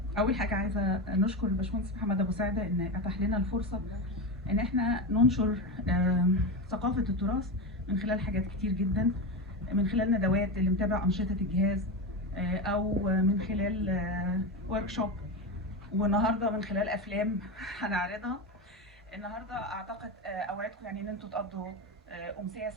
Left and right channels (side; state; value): both; normal; correlation 0.18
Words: اول حاجه عايزه نشكر الباشمهندس محمد ابو سعده ان اتاح لنا الفرصه ان احنا ننشر ثقافه التراث من خلال حاجات كتير جدا، من خلال ندوات اللي متابع انشطه الجهاز، او من خلال ورك شوب، والنهارده من خلال افلام هنعرضها. النهارده اعتقد اوعدكم يعني ان انتوا تقضوا امسيه